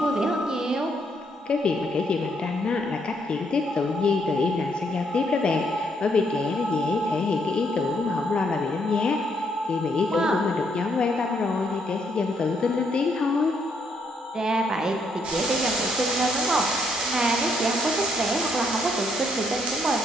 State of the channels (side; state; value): both; normal; correlation 0.73